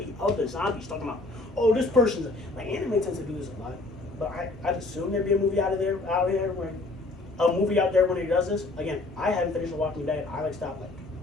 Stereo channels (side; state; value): right; quieter; 3.1 dB